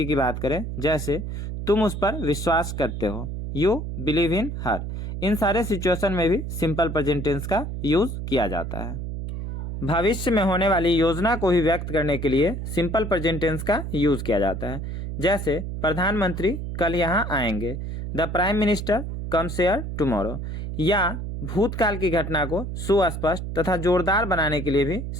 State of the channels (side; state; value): right; noise; hum, 5 dB below the sound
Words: की बात करें, जैसे तुम उस पर विश्वास करते हो, यू बिलीव इन हर। इन सारे सिचुएशन में भी सिंपल प्रेजेंट टेंस का यूज किया जाता है। भविष्य में होने वाली योजना को भी व्यक्त करने के लिए सिंपल प्रेजेंट टेंस का यूज किया जाता है। जैसे प्रधानमंत्री कल यहाँ आएंगे, the prime minister comes here tomorrow. या भूतकाल की घटना को सुस्पष्ट तथा जोरदार बनाने के लिए भी